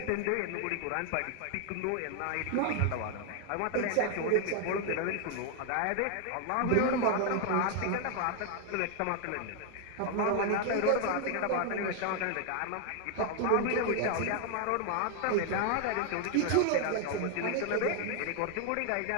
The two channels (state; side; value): different; both; correlation 0.00